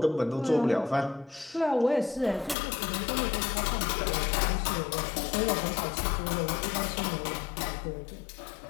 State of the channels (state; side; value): drops out; right; at 2.6 s